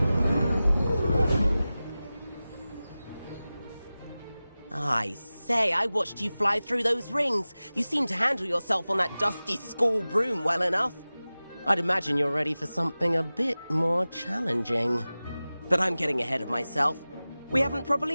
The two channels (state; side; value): inverted; both; correlation -0.97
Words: I say, I watched you fly through those rings. You seem to handle yourself on that dusty school broom well enough. I'd imagine you're ready for something a bit more challenging. But I'm getting ahead of myself. We haven't